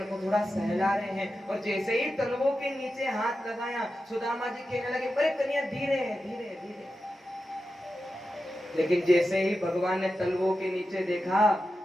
को थोड़ा सहला रहे हैं। और जैसे ही तलवों के नीचे हाथ लगाया सुदामा जी कहने लगे, अरे कन्हैया धीरे धीरे धीरे। लेकिन जैसे ही भगवान ने तलवों के नीचे देखा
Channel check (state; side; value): normal; both; correlation 0.91